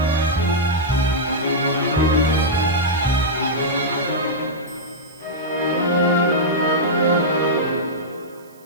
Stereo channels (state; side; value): noise; right; hiss, 29 dB below the sound